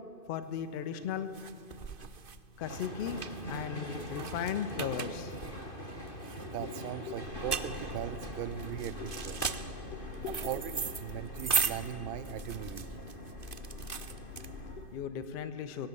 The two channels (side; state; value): right; late; 2.5 ms